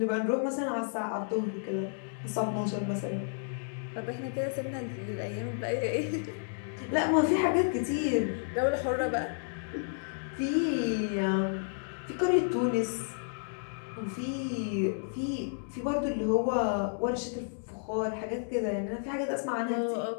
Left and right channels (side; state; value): right; silent; digital silence